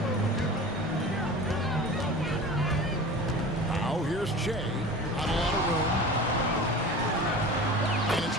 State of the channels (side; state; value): both; normal; correlation 0.36